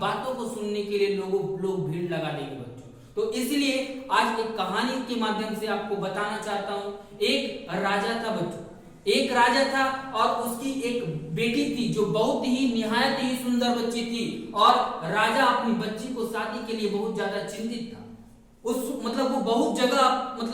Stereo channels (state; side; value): identical; both; correlation 1.00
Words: को सुनने के लिए लोग भीड़ लगा देंगे बच्चों। तो इसलिए आज एक कहानी के माध्यम से आपको बताना चाहता हूं। एक राजा था बच्चों, एक राजा था और उसकी एक बेटी थी जो बहुत ही निहायत ही सुंदर बच्ची थी, और राजा अपनी बच्ची को शादी के लिए बहुत ज्यादा चिंतित था। वो बहुत